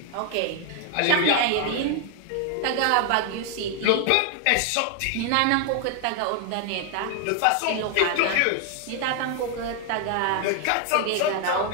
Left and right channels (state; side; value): different; both; correlation 0.00